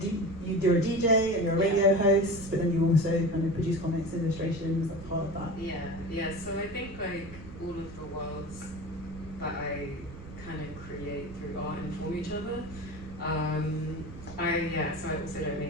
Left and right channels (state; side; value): noise; right; rumble, 14 dB below the sound